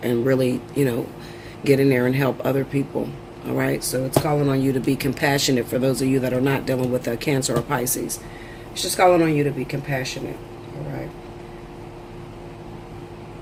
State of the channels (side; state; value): both; identical; correlation 1.00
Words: really, you know, get in there and help other people, all right? So it's calling on you to be compassionate for those of you that are not dealing with a Cancer or Pisces. It's just calling on you to be compassionate, all right?